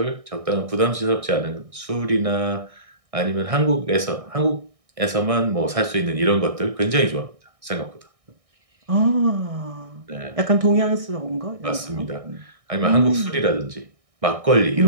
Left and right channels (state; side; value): late; left; 1.6 ms